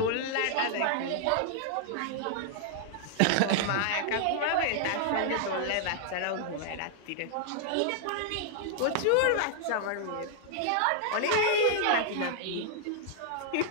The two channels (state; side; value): different; both; correlation -0.01